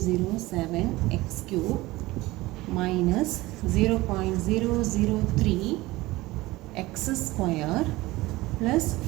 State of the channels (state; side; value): quieter; left; 19.5 dB